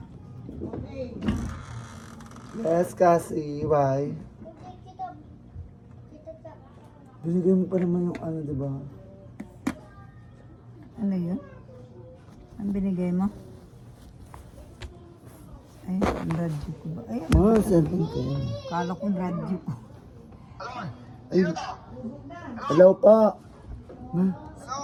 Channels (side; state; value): both; identical; correlation 1.00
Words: Yes, Cassie. Why? Binigay mo pa naman yung diba? Ano yun? Ang binigay mo? Ay, ang radyo ko ba? Ay, Cellphone ko yan. kala ko radyo ko. Ay, hello pa. Ma,